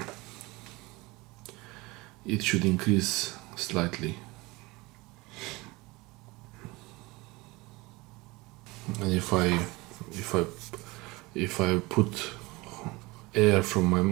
it should increase slightly. And if I put air from my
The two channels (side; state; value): left; quieter; 23.1 dB